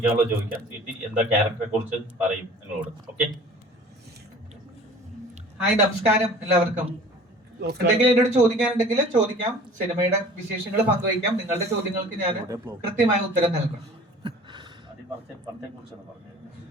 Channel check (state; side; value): normal; both; correlation 0.46